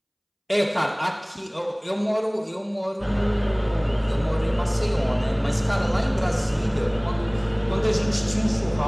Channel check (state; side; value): identical; both; correlation 1.00